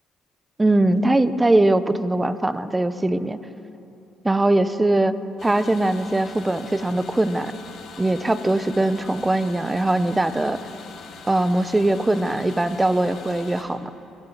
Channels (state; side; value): normal; both; correlation 0.96